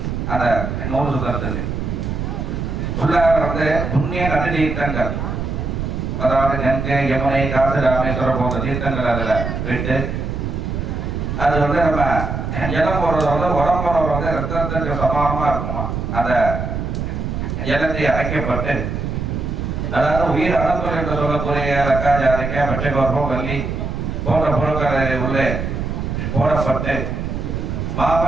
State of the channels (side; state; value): right; noise; rumble, 3 dB below the sound